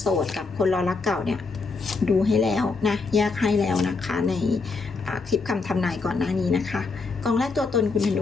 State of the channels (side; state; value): right; quieter; 4.2 dB